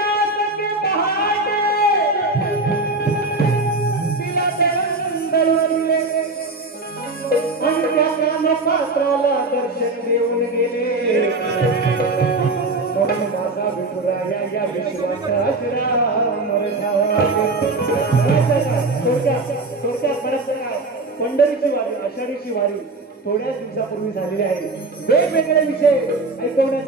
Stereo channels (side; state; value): left; quieter; 3.2 dB